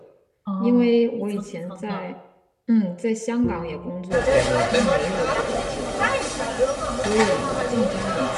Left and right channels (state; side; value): identical; both; correlation 1.00